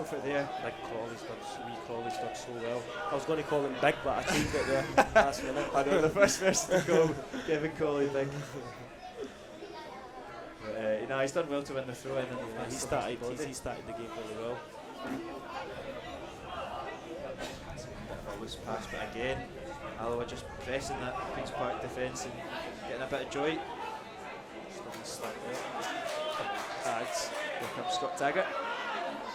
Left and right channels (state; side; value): identical; both; correlation 1.00